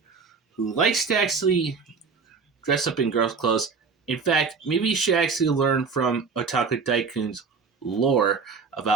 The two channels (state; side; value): quieter; left; 5.2 dB